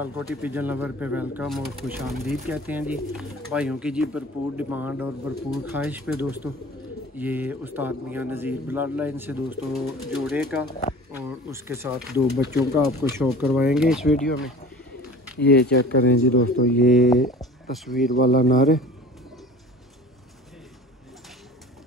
pigeon lover पे welcome और खुश आमदीद कहते हैं जी। भाइयों की जी भरपूर डिमांड और भरपूर ख्वाहिश पे दोस्तों ये उस्ताद मियां नज़ीर ब्लड लाइन से दोस्तों जोड़े का और उसके साथ दो बच्चों का आपको शो करवाएंगे इस वीडियो में। ये चेक करें जी दोस्तों, ये तस्वीर वाला नर है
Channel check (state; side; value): normal; both; correlation 0.42